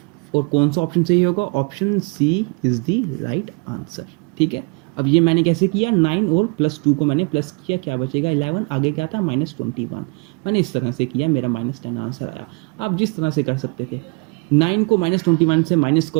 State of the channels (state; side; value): quieter; left; 31.3 dB